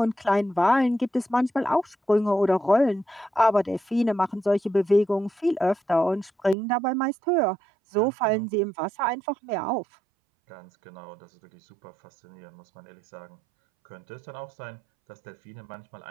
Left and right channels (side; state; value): left; drops out; at 6.6 s